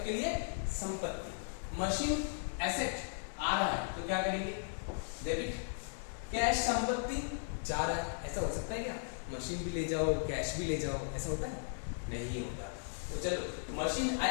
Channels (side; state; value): right; silent; 53 dB below the other